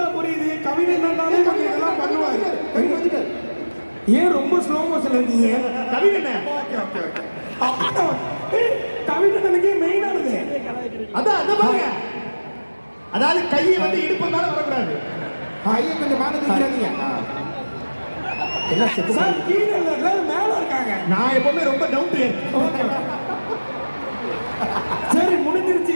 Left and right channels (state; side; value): inverted; both; correlation -1.00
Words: புரியுது. கவின் என்னன்னாலே கொஞ்சம் இதெல்லாம் பண்ணுவாரு. ஏன் ரொம்ப ஸ்லோ மோஷன்ல இருக்கீங்க? கவின் என்ன? கவின் என்னக்கே மெயினானது. அதான் அத பாருங்க. அதாவது கையை வந்து இடுப்பு மேல வரக்கூடாது. ஐயா கொஞ்சம் மேல தூக்கிறாதீங்க. என்ன செத்து சார் கீழே இல்ல, எல்லாரும் மேல இருக்காங்க. நான் எப்பவுமே ரொம்ப டவுன் டு எர்த். சரி முடிஞ்சிருச்சு.